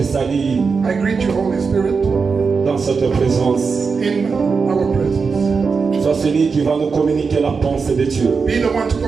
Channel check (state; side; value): quieter; left; 5.1 dB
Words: salue I greet you, Holy Spirit, dans cette présence. in our presence. Sois celui qui va nous communiquer la pensée de Dieu. Be the one to